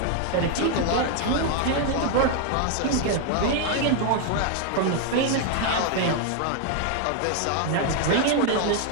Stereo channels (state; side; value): different; both; correlation 0.00